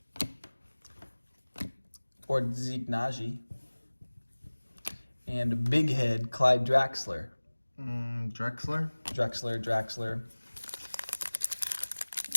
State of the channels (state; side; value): inverted; both; correlation -1.00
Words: Or Zeke Naji. And big head, Clyde Draxler. Drexler? Draxler.